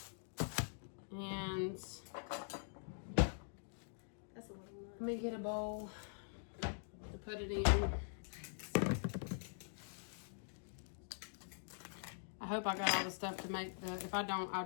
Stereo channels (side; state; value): right; silent; digital silence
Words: And let me get a bowl to put it in. I hope I got all the stuff to make the, if I don't,